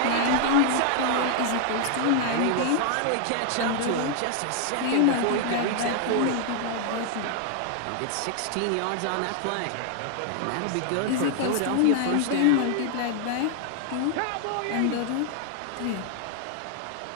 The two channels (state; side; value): different; both; correlation 0.00